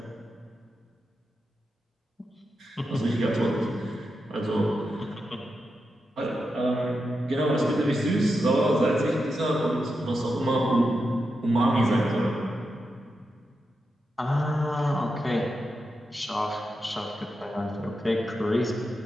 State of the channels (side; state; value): both; normal; correlation 0.88